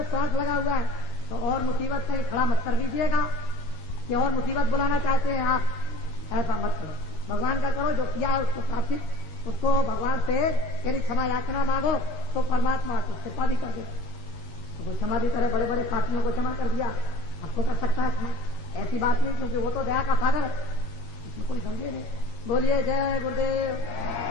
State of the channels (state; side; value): late; right; 13 ms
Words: स्वार्थ लगा हुआ है। तो और मुसीबत कहीं खड़ा मत कर लीजिएगा कि और मुसीबत बुलाना चाहते हैं आप, ऐसा मत करो। भगवान का करो, जो किया है उसको प्राप्ति, उसको भगवान से यदि क्षमा याचना मांगो तो परमात्मा को कृपा भी कर दे। तो क्षमा भी करे, बड़े बड़े पापियों को क्षमा कर दिया, आपको कर सकता है क्षमा, ऐसी बात नहीं, क्योंकि वो तो दया का सागर है, इसमें कोई समझे नहीं। बोलिए जय गुरुदेव,